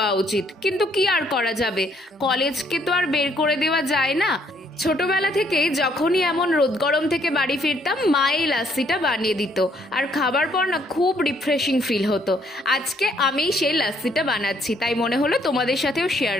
উচিত। কিন্তু কি আর করা যাবে, কলেজকে তো আর বের করে দেওয়া যায় না। ছোটবেলা থেকেই যখনই এমন রোদ গরম থেকে বাড়ি ফিরতাম মা এই লাস্সিটা বানিয়ে দিত, আর খাবার পর না খুব রিফ্রেশিং ফিল হতো। আজকে আমি সেই লাস্সিটা বানাচ্ছি, তাই মনে হলো তোমাদের সাথেও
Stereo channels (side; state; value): both; normal; correlation 0.68